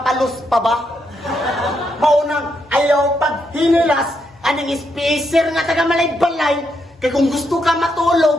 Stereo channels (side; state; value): both; normal; correlation 0.79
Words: pa ba? Maunang ayaw pag hinilas, anong spacer nga taga malay-balay, kaya kung gusto ka